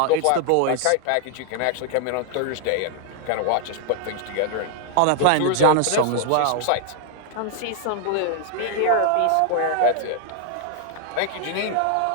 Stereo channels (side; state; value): both; different; correlation 0.00